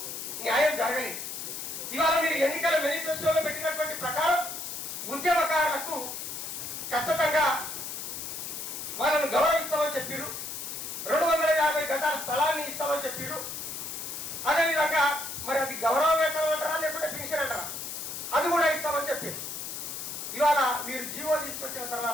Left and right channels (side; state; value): left; noise; hiss, 6 dB below the sound